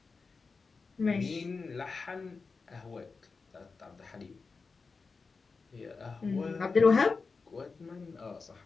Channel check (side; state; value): right; quieter; 4.5 dB